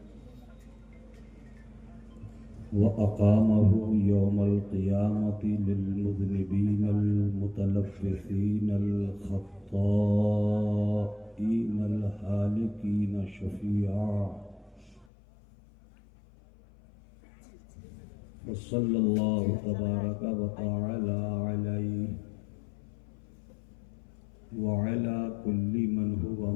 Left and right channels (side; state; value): right; drops out; at 15.1 s